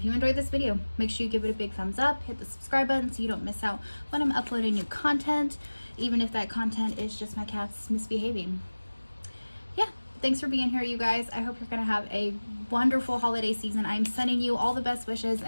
you enjoyed this video, make sure you give it a big thumbs up, hit the subscribe button so you don't miss out when I'm uploading new content, even if that content is just my cats misbehaving. Yeah, thanks for being here, you guys. I hope you're gonna have a wonderful holiday season. I'm sending you all the best wishes,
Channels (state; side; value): inverted; both; correlation -1.00